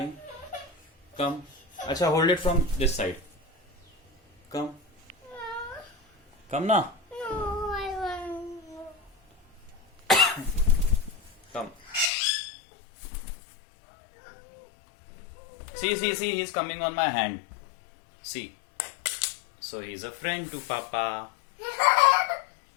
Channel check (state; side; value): drops out; right; at 12.1 s